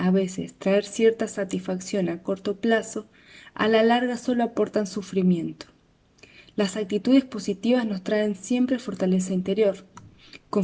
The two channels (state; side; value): identical; both; correlation 1.00